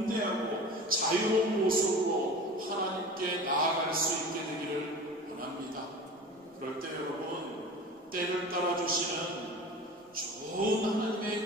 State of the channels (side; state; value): both; normal; correlation 0.36